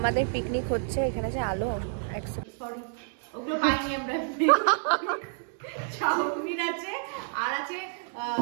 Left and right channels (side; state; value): left; silent; 59 dB below the other